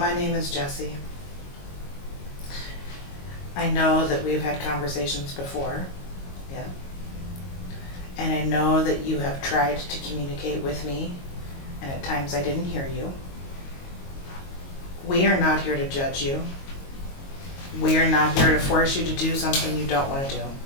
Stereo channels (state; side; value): late; right; 22 ms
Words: name is Jessie. I know that we've had conversations before, yeah. And I know that you have tried to communicate with me, and at times I didn't hear you. We are not here to judge you. We are not here to force you to do something you don't want to do.